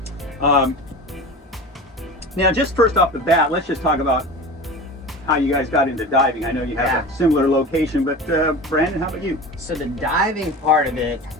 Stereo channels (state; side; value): normal; both; correlation 0.33